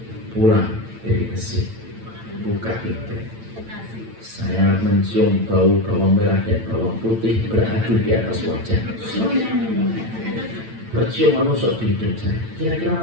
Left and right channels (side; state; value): left; late; 8.9 ms